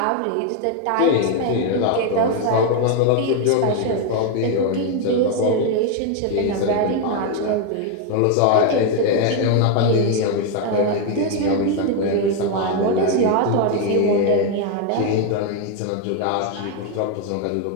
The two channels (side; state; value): both; different; correlation 0.01